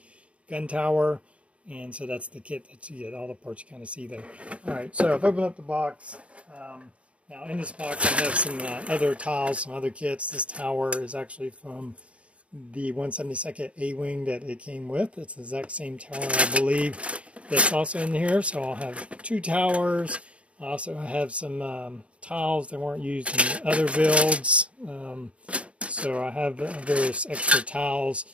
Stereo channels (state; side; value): late; left; 0.062 ms